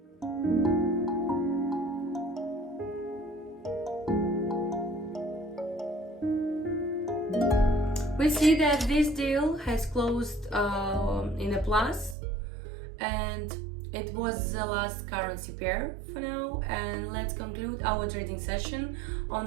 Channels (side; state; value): left; drops out; at 12.2 s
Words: We see that this deal has closed in a plus, and it was the last currency pair for now. And let's conclude our trading session